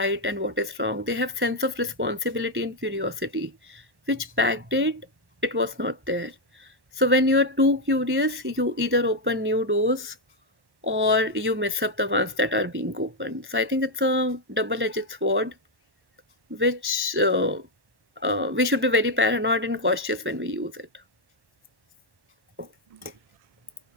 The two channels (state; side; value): late; left; 1.1 ms